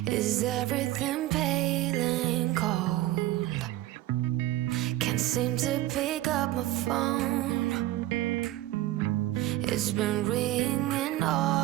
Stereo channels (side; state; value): left; quieter; 15.3 dB